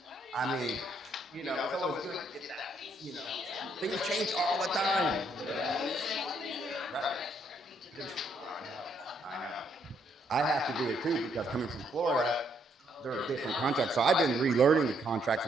I mean, it's always good to get that, Things change all the time. Right. I know. I have to do it too because coming from Florida, there are different contracts. So I've been relearning the contracts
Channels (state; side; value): normal; both; correlation 0.72